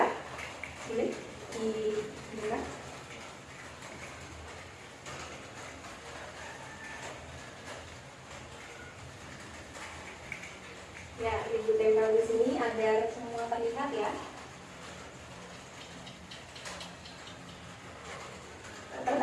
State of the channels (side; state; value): both; identical; correlation 1.00